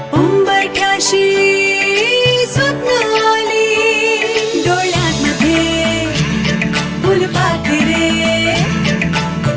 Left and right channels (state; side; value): identical; both; correlation 1.00